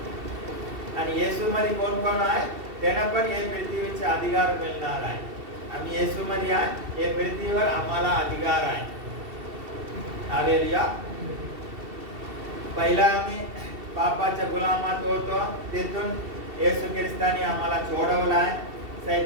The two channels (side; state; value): left; late; 2.7 ms